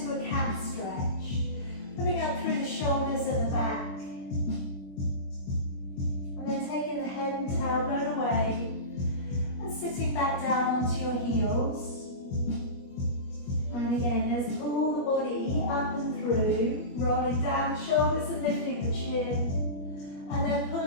a cat stretch, putting up through the shoulders and the back. And then taking the head and tailbone away and sitting back down onto your heels. And again, let's pull the body up and through, rolling down the shoulders and lifting the chin. And then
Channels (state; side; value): late; right; 21 ms